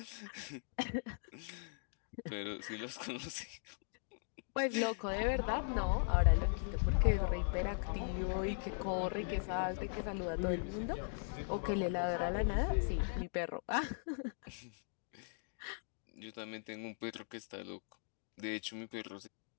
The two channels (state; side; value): silent; right; digital silence